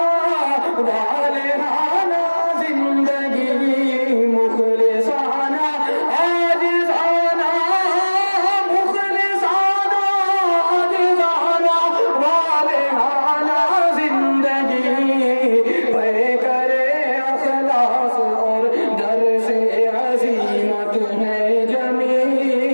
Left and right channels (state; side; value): inverted; both; correlation -1.00